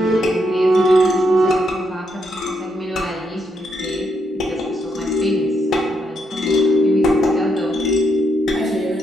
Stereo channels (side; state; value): both; normal; correlation 0.78